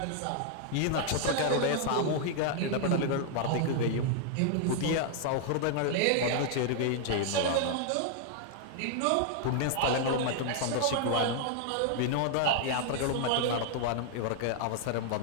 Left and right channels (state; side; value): different; both; correlation 0.00